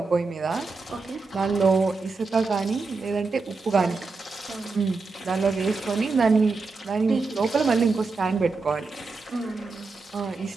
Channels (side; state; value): left; quieter; 4.0 dB